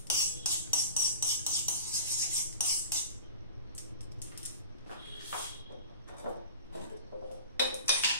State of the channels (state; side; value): inverted; both; correlation -0.40